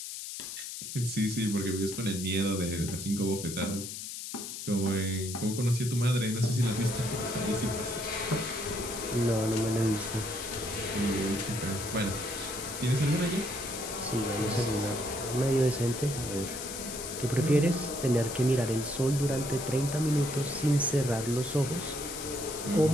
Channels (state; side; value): noise; left; hiss, 8 dB below the sound